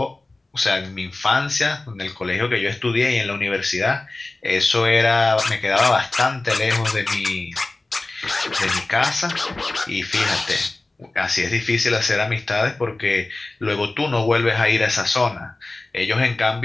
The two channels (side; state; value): right; quieter; 3.0 dB